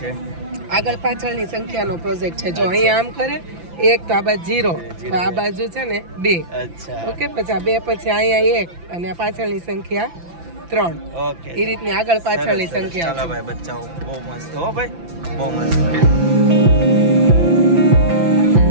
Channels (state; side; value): late; left; 5.9 ms